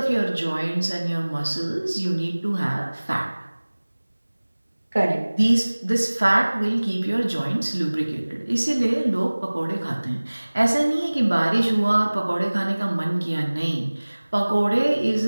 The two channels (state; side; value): inverted; both; correlation -1.00